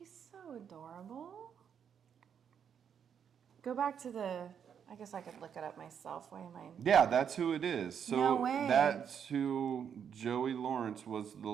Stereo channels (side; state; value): left; quieter; 7.9 dB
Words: so adorable. Go back to the. I guess I could look it up myself. Why am I? Yeah, that's who it is. So No way. that's who Joey Lawrence was, the